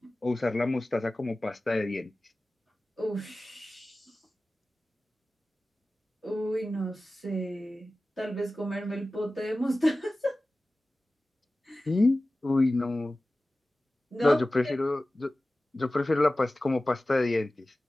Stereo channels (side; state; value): both; normal; correlation 0.96